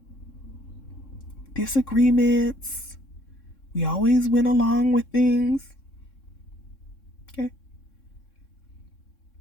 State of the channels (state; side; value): late; right; 3.7 ms